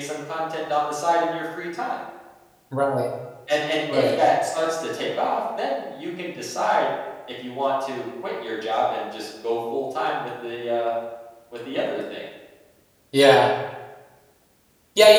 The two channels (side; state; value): both; identical; correlation 1.00